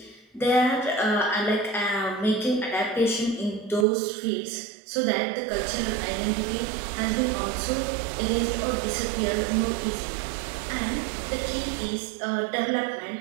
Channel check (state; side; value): drops out; left; at 3.9 s